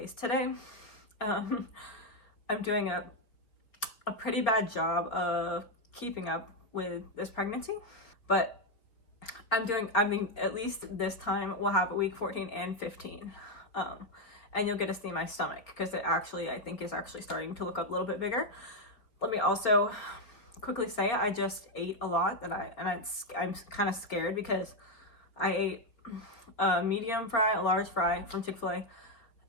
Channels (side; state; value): right; late; 4.5 ms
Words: today. I'm doing a pretty bad job of keeping up with this pregnancy, but at least this time we'll have week 14 and 15. And you'll get to see my stomach because I think is actually starting to look a little bit bigger. Let me also quickly say I just ate a lot I'm kind of scared because I ate a medium fry, a large fry from Chick-fil-A,